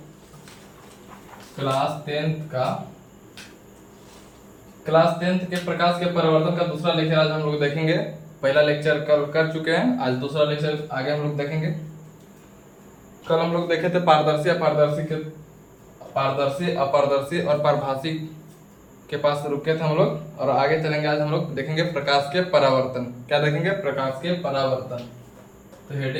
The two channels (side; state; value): both; identical; correlation 1.00